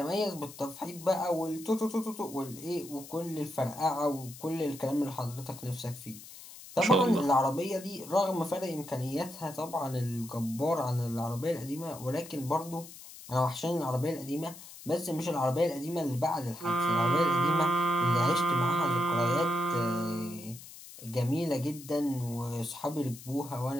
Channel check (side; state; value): left; noise; hiss, 16 dB below the sound